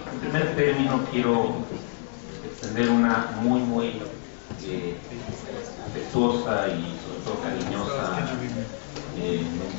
en primer término quiero extender una muy afectuosa y sobre todo cariñosa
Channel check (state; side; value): silent; right; 59 dB below the other